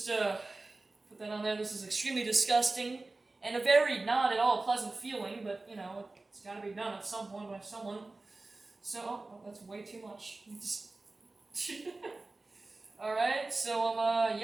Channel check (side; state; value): left; quieter; 3.2 dB